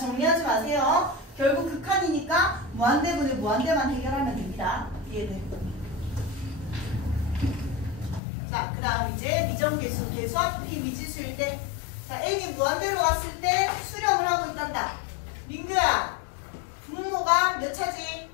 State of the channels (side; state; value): right; drops out; at 8.2 s